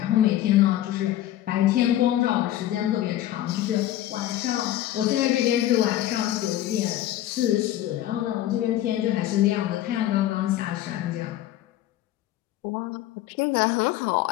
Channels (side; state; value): right; quieter; 13.4 dB